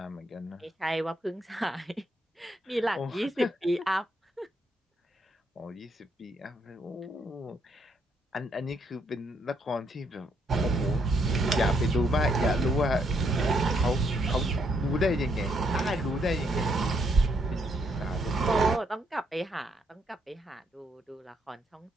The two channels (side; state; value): both; normal; correlation 0.74